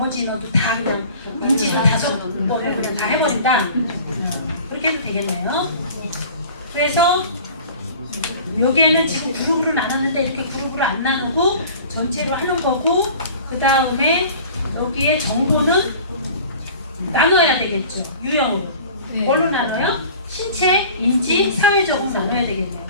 인원도 다 그냥 인지를 5번을 그냥 다 해버린다. 그렇게 해도 되겠네요. 그래서 여기에는 지금 그룹으로 나눴는데 이렇게 그룹으로 안 나누고 전체로 하는 거고, 그 다음에 여기에 정보는 나눠야 되겠죠. 유형으로. 뭘로 나눠요? 신체, 인지, 사회적으로 나눠야 되겠네요.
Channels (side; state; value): both; inverted; correlation -0.43